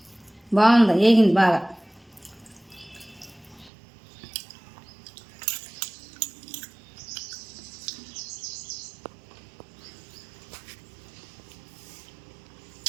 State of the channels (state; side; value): drops out; left; at 3.7 s